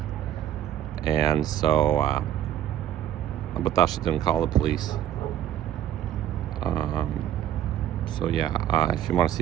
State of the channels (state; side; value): quieter; left; 11.1 dB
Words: And so, but Dasha didn't call the police. So yeah, if you want to